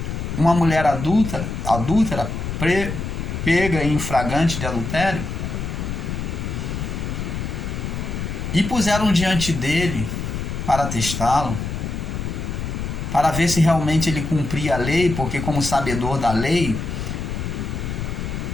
uma mulher adúltera, pega em flagrante de adultério, e puseram diante dele para testá-lo, para ver se realmente ele cumpria a lei, porque como sabedor da lei,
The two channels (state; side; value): noise; left; rumble, 4 dB below the sound